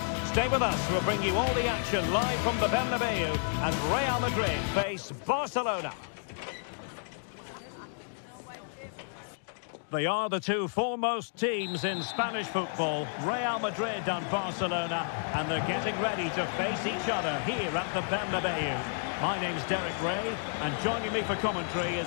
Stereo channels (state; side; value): silent; right; digital silence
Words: Stay with us, we'll bring you all the action live from the Bernabeu as Real Madrid face Barcelona. They are the two foremost teams in Spanish football, Real Madrid and Barcelona, and they're getting ready to face each other here at the Bernabeu. My name's Derek Ray, and joining me for commentary is